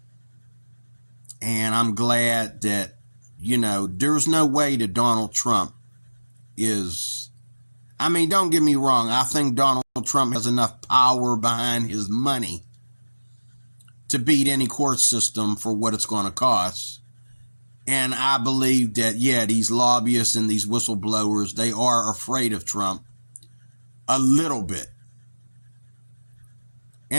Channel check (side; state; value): both; inverted; correlation -1.00